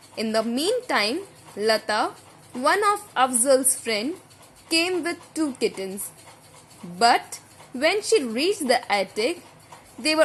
In the meantime, Lata, one of Afzal's friend, came with 2 kittens. But when she reached the attic, they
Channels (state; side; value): identical; both; correlation 1.00